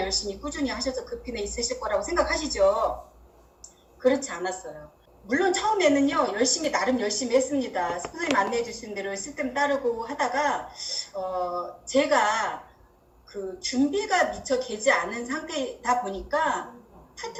꾸준히 하셔서 그 핀에 있으실 거라고 생각하시죠. 그렇지 않았어요. 물론 처음에는요 나름 열심히 했습니다. 선생님 안내해 주신 대로 시스템 따르고 하다가 제가 그 준비가 미처 되지 않은 상태다 보니까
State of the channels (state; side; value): identical; both; correlation 1.00